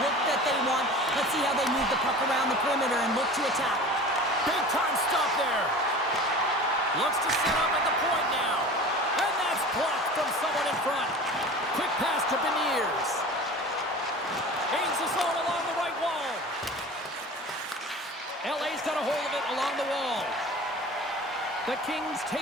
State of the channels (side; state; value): both; normal; correlation 0.38